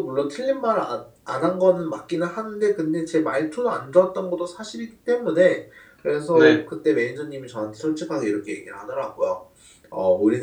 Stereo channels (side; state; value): both; identical; correlation 1.00